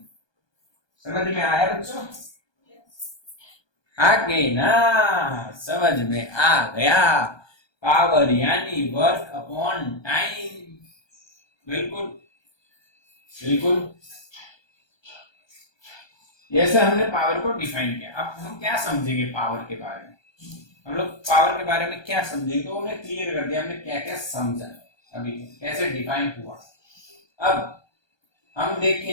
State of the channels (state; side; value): late; right; 1.2 ms